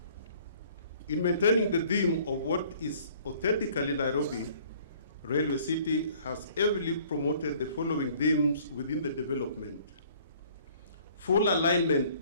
In maintaining the theme of what is authentically Nairobi, Railway City has heavily promoted the following themes within the development: full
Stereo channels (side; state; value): both; inverted; correlation -0.56